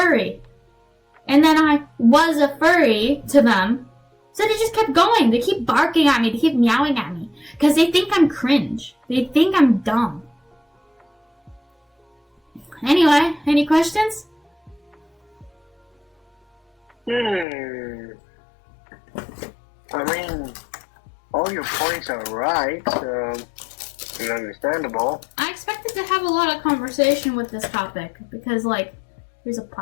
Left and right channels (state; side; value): drops out; right; at 17.4 s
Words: And then I was a furry to them. So they just kept going. They keep barking at me. They keep meowing at me. Because they think I'm cringe. They think I'm dumb. Anyway, any questions? I mean, all your points are right, and understandable. I expected to have a lot of conversation with this topic. Because, like, here's a